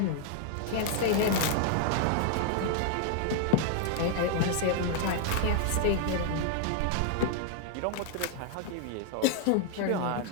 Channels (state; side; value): different; both; correlation 0.00